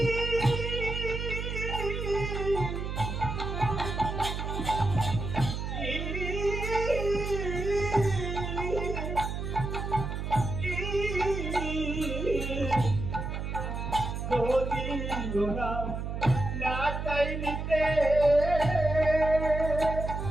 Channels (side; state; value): right; noise; hum, 4 dB below the sound